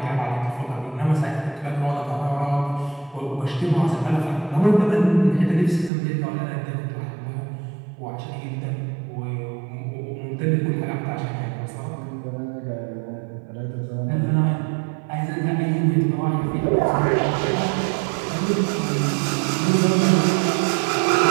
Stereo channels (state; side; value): drops out; left; at 5.9 s